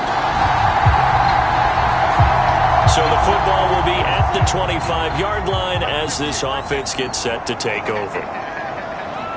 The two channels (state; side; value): identical; both; correlation 1.00